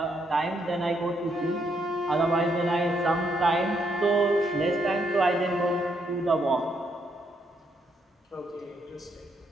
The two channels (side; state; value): both; normal; correlation 0.75